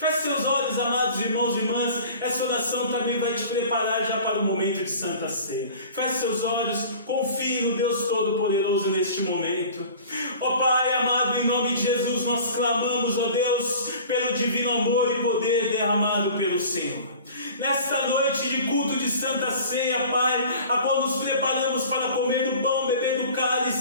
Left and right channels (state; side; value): inverted; both; correlation -0.43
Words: seus olhos, amados irmãos e irmãs, essa oração também vai te preparar já para o momento de Santa Ceia. Feche seus olhos, confie no Deus Todo-Poderoso neste momento. Ó Pai amado, em nome de Jesus, nós clamamos, ó Deus, pelo divino amor e poder derramado pelo Senhor. Nesta noite de culto de Santa Ceia, Pai, a qual nos preparamos para comer do pão, beber do